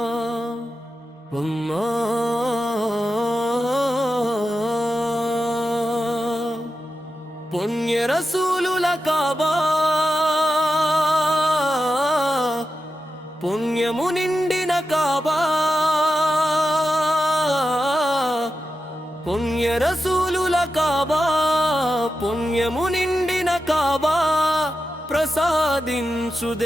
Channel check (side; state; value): both; normal; correlation 0.90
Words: మొన్న పుణ్య రసూలుల కాబా పుణ్యము నిండిన కాబా పుణ్య రసూలుల కాబా పుణ్యము నిండిన కాబా ప్రసాదించు